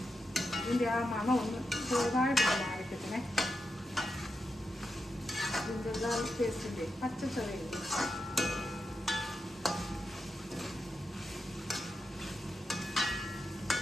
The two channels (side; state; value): both; normal; correlation 0.87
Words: ഇതിൻ്റെ ആ മണം ഒന്ന് ചെറുതായിട്ട് മാറിക്കത്തിനെ. ജിഞ്ചർ ഗാർലിക് പേസ്റ്റിൻ്റെ പച്ച ചൊവയില്ല.